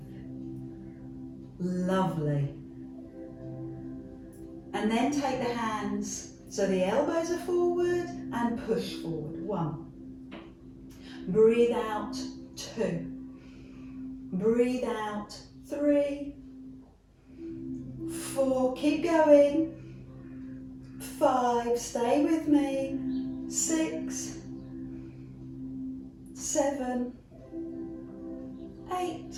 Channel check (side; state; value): both; identical; correlation 1.00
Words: Lovely. And then take the hands so the elbows are forward and push forward. 1. Breathe out. 2. Breathe out. 3. 4. Keep going. 5. Stay with me. 6. 7. 8.